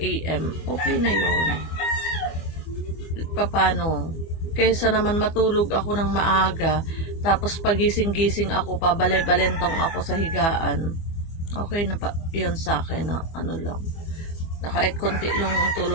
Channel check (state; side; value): late; right; 24 ms